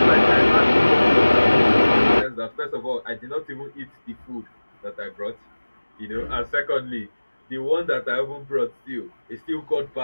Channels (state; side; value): inverted; both; correlation -1.00